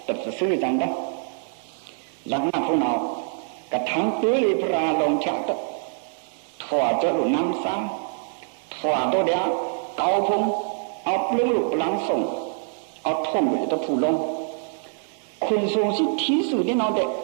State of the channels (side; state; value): left; silent; 62 dB below the other